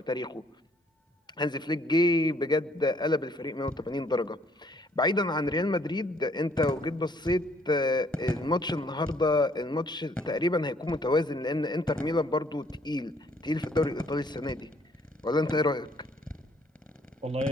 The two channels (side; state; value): both; normal; correlation 0.64